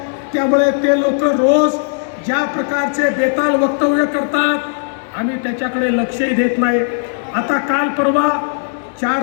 त्यामुळे ते लोक रोज ज्या प्रकारचे बेताल वक्तव्य करतात आम्ही त्याच्याकडे लक्षही देत नाही. आता काल परवा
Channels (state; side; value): silent; right; digital silence